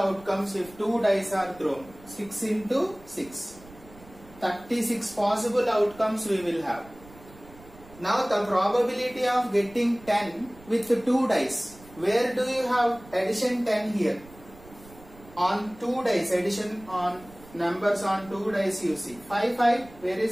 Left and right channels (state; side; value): noise; right; rumble, 22 dB below the sound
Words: if two dice are thrown. 6 into 6. 36 possible outcomes we will have. Now the probability of getting 10 with 2 dice. Where do you have addition 10 here? On 2 dice, addition on numbers on 2 dice you see. 5, 5, where